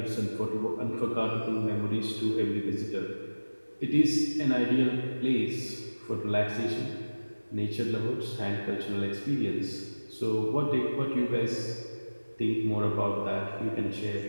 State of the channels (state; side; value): inverted; both; correlation -1.00